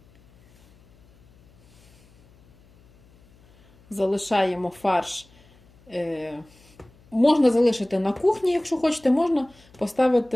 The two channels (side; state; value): left; noise; hum, 29 dB below the sound